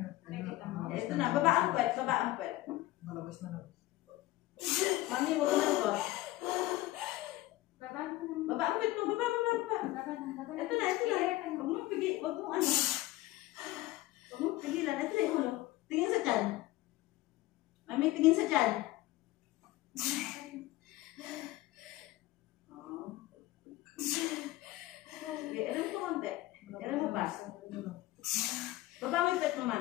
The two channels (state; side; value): quieter; right; 17.3 dB